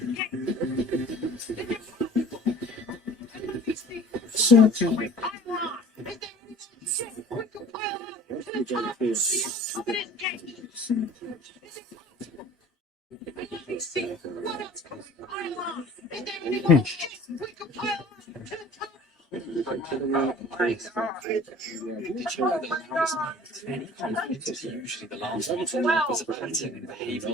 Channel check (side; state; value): both; normal; correlation 0.46